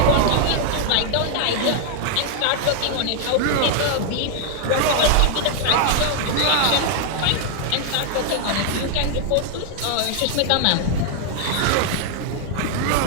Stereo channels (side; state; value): both; different; correlation 0.00